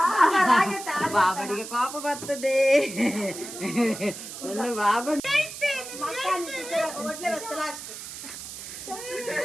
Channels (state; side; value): noise; right; hiss, 10 dB below the sound